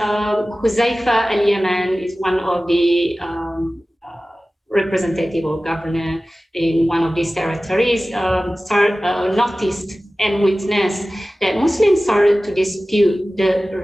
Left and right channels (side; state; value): both; normal; correlation 0.97